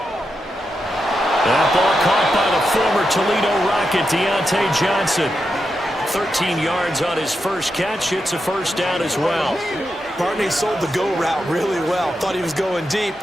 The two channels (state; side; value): normal; both; correlation 0.87